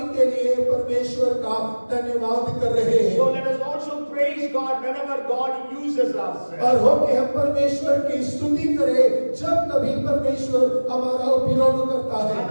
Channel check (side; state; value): both; inverted; correlation -1.00